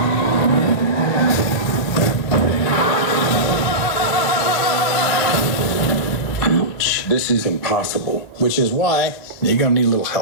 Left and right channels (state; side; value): late; right; 1.3 ms